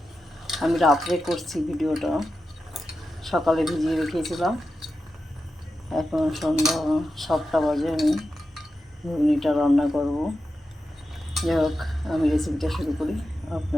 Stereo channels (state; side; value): normal; both; correlation 0.90